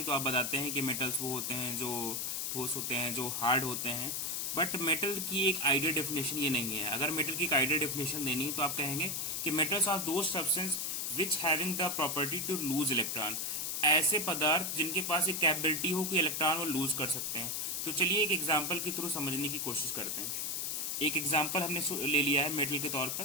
तो आप बताते हैं कि मेटल्स वो होते हैं जो ठोस होते हैं, जो हार्ड होते हैं। बट मेटल की एक आइडियल डेफिनेशन ये नहीं है। अगर मेटल की एक आइडियल डेफिनेशन देनी है तो आप कहेंगे कि metals are the substance which having the property to lose electron. ऐसे पदार्थ जिनके पास एक कैपेबिलिटी हो कि इलेक्ट्रॉन वो लूज कर सकते हैं। तो चलिए एक एग्जांपल के थ्रू समझने की कोशिश करते हैं। एक एग्जांपल हमने ले लिया है मेटल के तौर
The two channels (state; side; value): noise; left; hiss, 1 dB below the sound